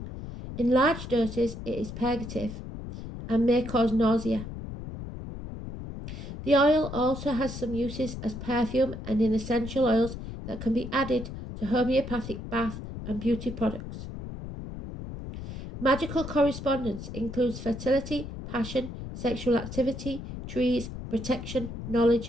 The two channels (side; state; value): left; noise; rumble, 9 dB below the sound